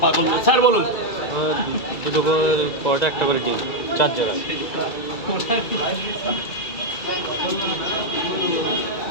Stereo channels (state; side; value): late; right; 2.3 ms